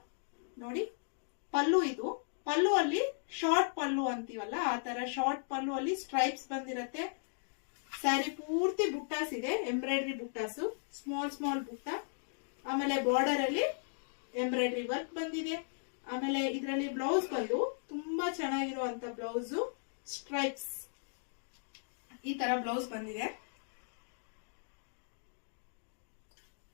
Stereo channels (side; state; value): right; silent; digital silence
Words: ನೋಡಿ. ಪಲ್ಲು, ಇದು ಪಲ್ಲು ಅಲ್ಲಿ ಶಾರ್ಟ್ ಪಲ್ಲು ಅಂತೀವಲ್ಲ ಆ ತರ ಶಾರ್ಟ್ ಪಲ್ಲು ಅಲ್ಲಿ ಸ್ಟ್ರೈಪ್ಸ್ ಬಂದಿರತ್ತೆ. ಸ್ಯಾರಿ ಪೂರ್ತಿ ಬುಟ್ಟಾಸ್ ಇದೆ, ಎಂಬ್ರಾಯ್ಡ್ರಿ ಬುಟ್ಟಾಸು, ಸ್ಮಾಲ್ ಸ್ಮಾಲ್ ಬುಟ್ಟ. ಆಮೇಲೆ ಬಾರ್ಡರ್ ಅಲ್ಲಿ ಎಂಬ್ರಾಯ್ಡ್ರಿ ವರ್ಕ್ ಬಂದಿದೆ. ಆಮೇಲೆ ಇದರಲ್ಲಿ ಬ್ಲೌಸ್ ಬಂದು ತುಂಬಾ ಚೆನ್ನಾಗಿರುವಂತ ಬ್ಲೌಸ್, ಸ್ಟ್ರೈಪ್ಸ್ ಈ ತರ ಬ್ಲೌಸ್ ಬಂದಿದೆ.